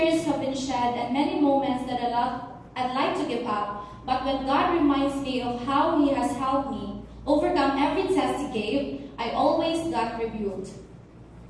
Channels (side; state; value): both; identical; correlation 1.00